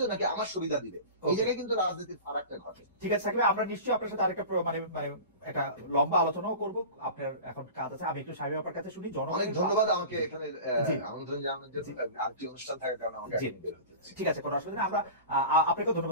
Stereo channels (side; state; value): both; inverted; correlation -0.34